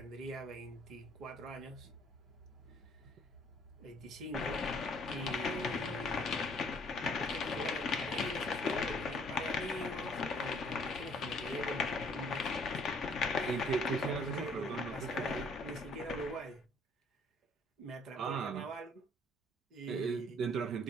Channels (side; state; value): both; normal; correlation 0.61